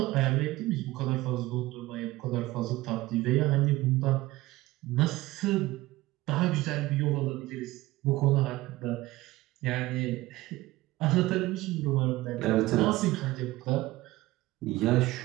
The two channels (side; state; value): left; quieter; 18.3 dB